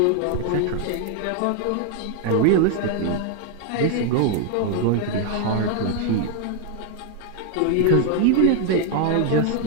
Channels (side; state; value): both; different; correlation 0.00